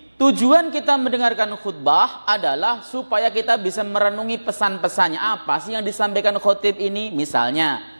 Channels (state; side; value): inverted; both; correlation -1.00